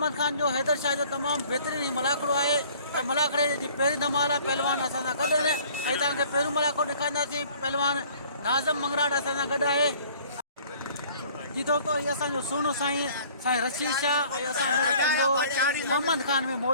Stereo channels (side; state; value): both; inverted; correlation -0.53